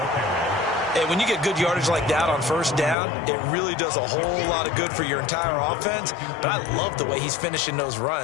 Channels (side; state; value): right; drops out; at 3.0 s